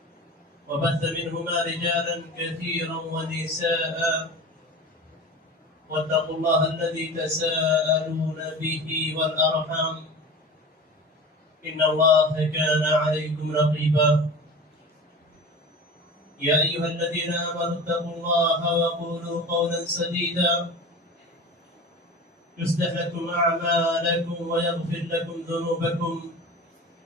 وبث منهما رجالا كثيرا ونساء واتقوا الله الذي تساءلون به والأرحام إن الله كان عليكم رقيبا. يا أيها الذين آمنوا اتقوا الله وقولوا قولا سديدا يصلح لكم أعمالكم ويغفر لكم ذنوبكم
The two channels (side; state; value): both; normal; correlation 0.34